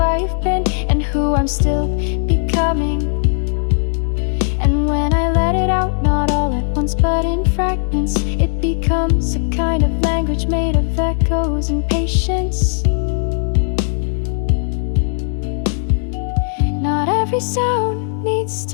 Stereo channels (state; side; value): silent; right; digital silence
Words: been and who I'm still becoming. And when I let it out, not all at once but in fragments, it becomes a kind of language made of echoes and patience. Not every sound needs